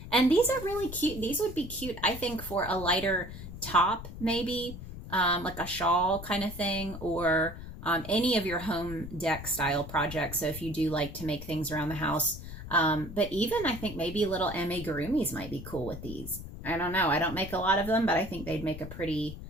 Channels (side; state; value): left; noise; rumble, 11 dB below the sound